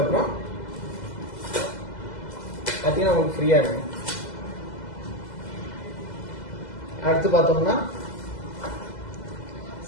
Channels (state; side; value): late; right; 2.0 ms